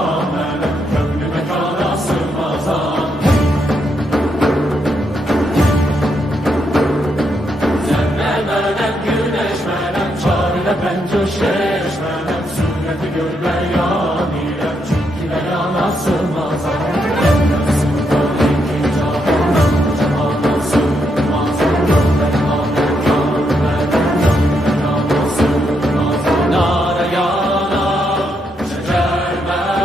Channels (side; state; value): both; normal; correlation 0.79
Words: gönlü mekana sığmazam. Zerremenem güneşmenem çarine ben coşeşmenem. Sureti gör beyan ile çünkü beyana sığmazam.